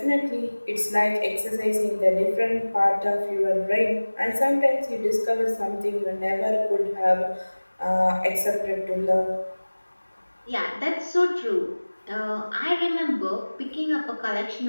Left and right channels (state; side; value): inverted; both; correlation -1.00